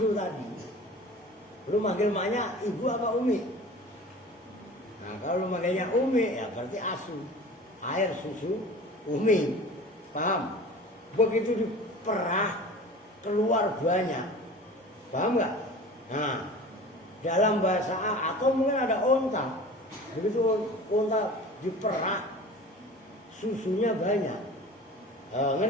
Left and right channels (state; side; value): normal; both; correlation 0.39